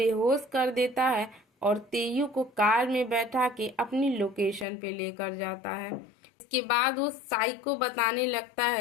कर देता है और तेयू को कार में बैठा के अपनी लोकेशन पे लेकर जाता है। इसके बाद वो साइको बताने लगता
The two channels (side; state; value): right; drops out; at 4.7 s